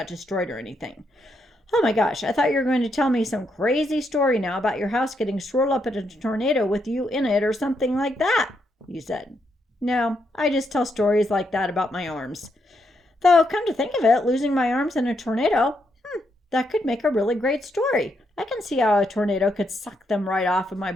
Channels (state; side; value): normal; both; correlation 0.79